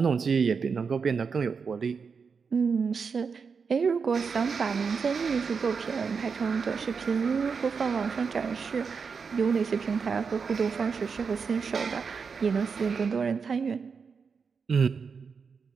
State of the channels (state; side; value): quieter; left; 5.6 dB